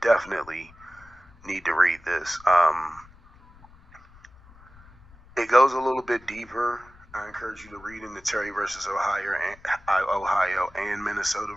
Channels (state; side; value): noise; left; rumble, 25 dB below the sound